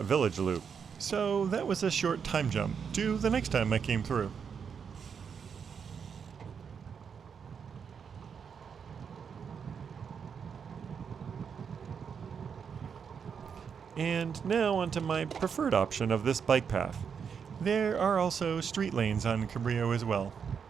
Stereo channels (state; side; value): quieter; left; 6.7 dB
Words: village loop, so that was a short time jump to the next time I came through. And now onto my preferred option of this bike path. There are also street lanes on Cabrillo as well.